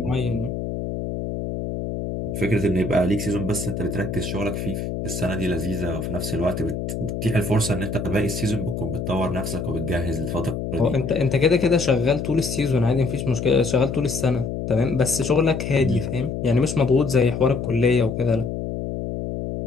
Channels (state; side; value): noise; left; hum, 4 dB below the sound